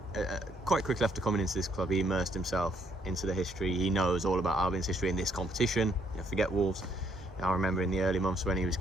Quite quickly after coming into this club, he immersed himself into the history. He knows all about Albion's history in this competition. Forget Wolves. I remember in the early months when he was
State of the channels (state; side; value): normal; both; correlation 0.70